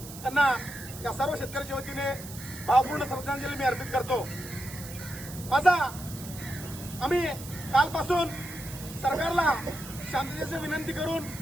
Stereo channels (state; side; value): noise; right; hiss, 14 dB below the sound